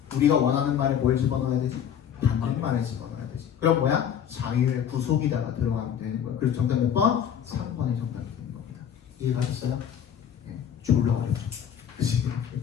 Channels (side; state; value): right; quieter; 8.9 dB